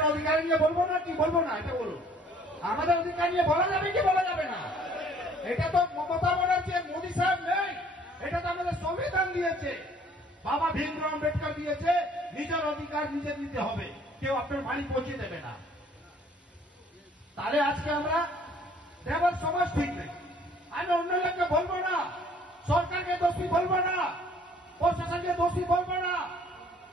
অধিকার নিয়ে বলবো না? কি বলবো না এটা বলুন। আমাদের অধিকার নিয়ে বলা যাবে কি বলা যাবে না? এটা তো মমতা ব্যানার্জি, মোদী সাহেব নেই, এটা তো আমাদের সংবিধান দিয়েছে, বাবা ভীমরাও আম্বেদকর দিয়েছে। নিজের অধিকার নিজে নিতে হবে, কেউ আপনার বাড়ি পৌঁছে দেবে না। তাহলে আজকে আমরা ড্রাইভার সমাজ ঠিক নেই। আমি অন্য লোককে বলবো না, সরকারকে দোষী বলবো না, প্রশাসনকে দোষী বলবো না।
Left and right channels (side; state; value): both; normal; correlation 0.57